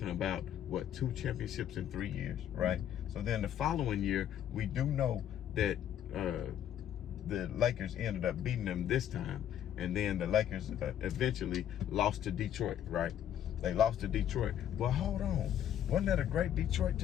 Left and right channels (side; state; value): right; quieter; 10.3 dB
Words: about, what, 2 championships in 3 years, right? So then the following year, we do know that the Lakers ended up beating them this time, and then the Lakers eventually lost to Detroit, right? They lost to Detroit. Well, hold on. Wasn't that a great Detroit